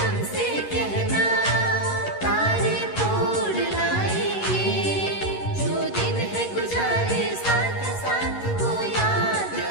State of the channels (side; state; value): right; late; 11 ms